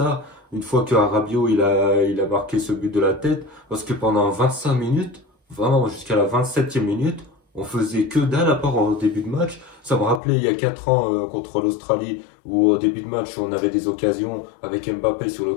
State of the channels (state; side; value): drops out; right; at 10.2 s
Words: Une fois que Rabiot il a marqué ce but de la tête, parce que pendant 25 minutes, vraiment jusqu'à la 27e minute, on faisait que dalle à part au début de match. Ça me rappelait il y a 4 ans contre l'Australie où au début de match on avait des occasions avec Mbappé sur le